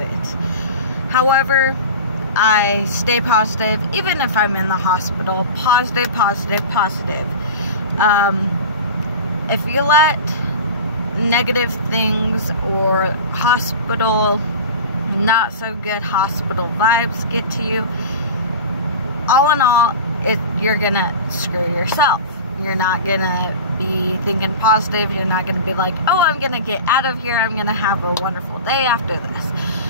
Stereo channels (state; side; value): inverted; both; correlation -0.32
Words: However, I stay positive, even if I'm in the hospital. Positive, positive, positive. If you let negative things or not so good hospital vibes get to you, all in all, you're gonna screw yourself. You're not gonna be thinking positive. You're not gonna be like, oh, I'm gonna get out of here, I'm gonna have a wonderful day after this.